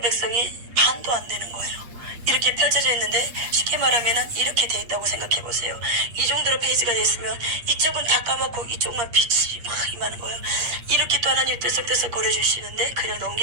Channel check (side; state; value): left; late; 8.5 ms